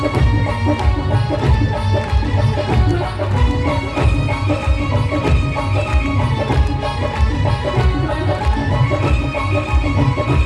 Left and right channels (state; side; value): identical; both; correlation 1.00